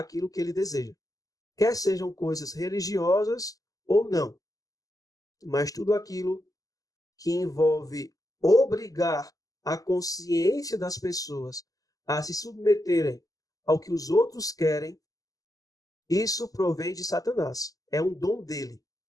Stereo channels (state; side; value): late; right; 0.17 ms